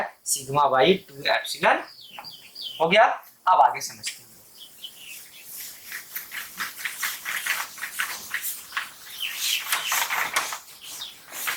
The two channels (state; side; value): identical; both; correlation 1.00